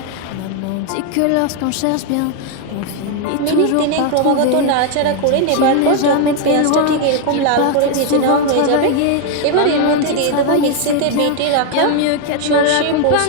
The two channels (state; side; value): different; both; correlation 0.01